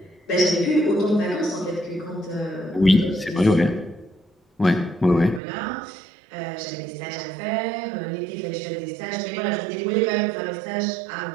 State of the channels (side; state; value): left; drops out; at 5.4 s